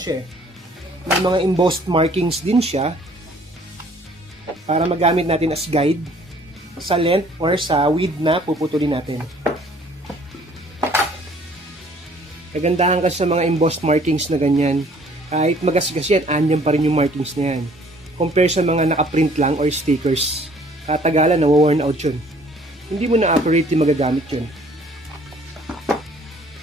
May mga embossed markings din siya para magamit natin as guide sa length or sa width na puputulin natin. Kagandahan kasi sa mga embossed markings na ganyan, kahit magasgas yan, andyan pa rin yung markings na yan. Compare sa mga nakaprint lang or stickers. Katagalan, nawa-worn out yun. Hindi mo na accurately magagamit yun.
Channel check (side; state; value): both; normal; correlation 0.57